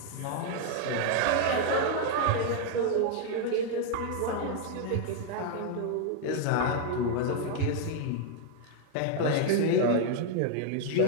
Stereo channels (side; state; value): both; different; correlation 0.00